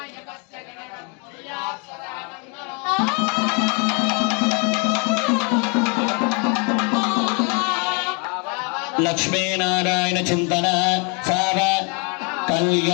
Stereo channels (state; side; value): quieter; right; 33.9 dB